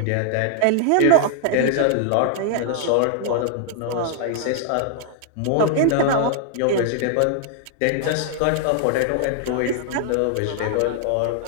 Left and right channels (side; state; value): both; different; correlation -0.01